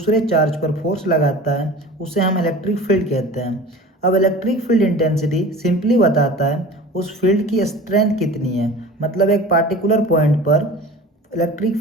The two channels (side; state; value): both; normal; correlation 0.39